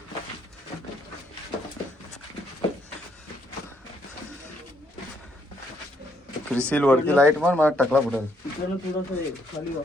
क्रिसिल वरती लाईट मार, मला टकला फुटेल.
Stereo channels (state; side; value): normal; both; correlation 0.72